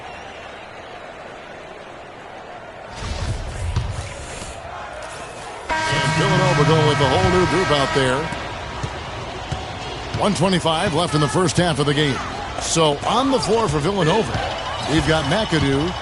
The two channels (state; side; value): identical; both; correlation 1.00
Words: And Villanova going with the whole new group out there. 1:25 left in the first half of the game. So on the floor for Villanova, we've got McAdoo.